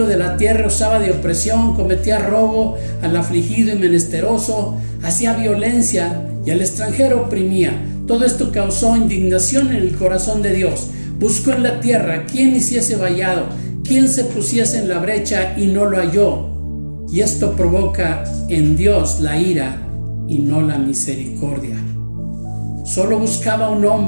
de la tierra usaba de opresión, cometía robo al afligido y menesteroso, hacía violencia y al extranjero oprimía. Todo esto causó indignación en el corazón de Dios. Buscó en la tierra quién hiciese vallado, quién se pusiese en la brecha, y no lo halló. Y esto provoca en Dios la ira y no la misericordia. Solo buscaba un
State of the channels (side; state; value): both; inverted; correlation -1.00